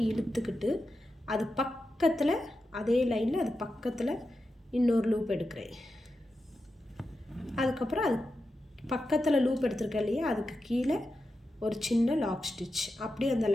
இழுத்துக்கிட்டு அது பக்கத்தில் அதே லைனில் அது பக்கத்தில் இன்னொரு லூப் எடுக்கிறேன். அதுக்கப்புறம் அது பக்கத்தில் லூப் எடுத்துருக்கேன் இல்லையா, அதுக்கு கீழே ஒரு சின்ன லாக் ஸ்டிச் அப்படியே அந்த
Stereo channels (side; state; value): both; normal; correlation 0.89